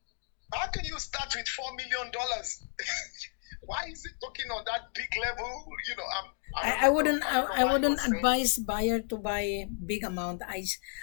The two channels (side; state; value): right; silent; 56 dB below the other